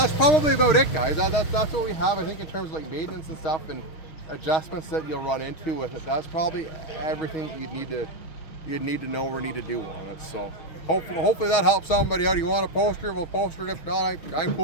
probably about it, guys. That's what we have, I think, in terms of like maintenance and stuff and adjustments that you'll run into with it. That's probably everything that you'd need to know or need to do on it. So hopefully that helps somebody out. You want a poster, we'll poster it. If not, I'm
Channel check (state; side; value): late; right; 6.3 ms